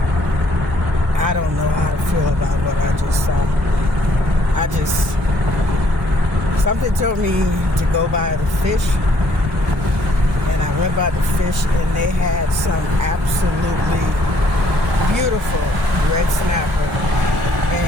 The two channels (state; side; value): normal; both; correlation 0.65